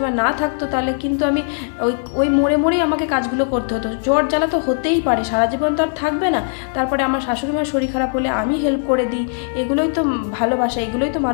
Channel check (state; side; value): silent; right; digital silence